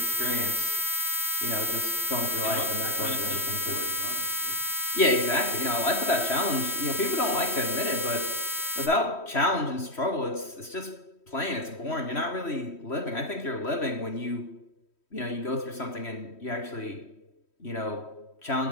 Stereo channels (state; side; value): late; right; 3.1 ms